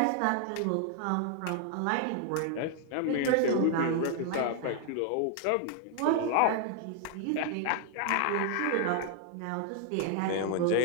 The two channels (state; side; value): different; both; correlation 0.00